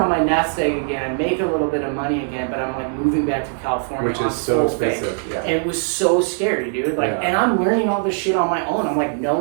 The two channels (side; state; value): left; silent; 65 dB below the other